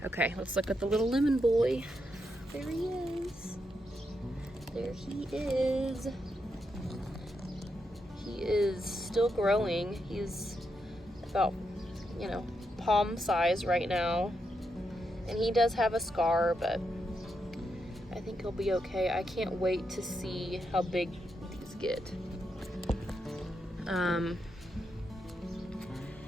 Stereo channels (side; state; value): both; normal; correlation 0.83